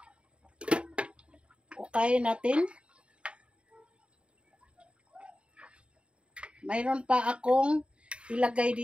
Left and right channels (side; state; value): left; late; 0.057 ms